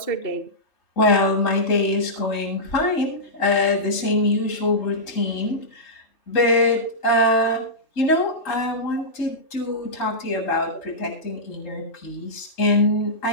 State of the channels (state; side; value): late; right; 3.2 ms